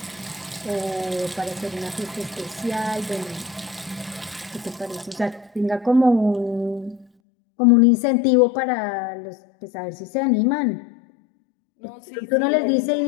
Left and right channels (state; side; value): drops out; right; at 7.1 s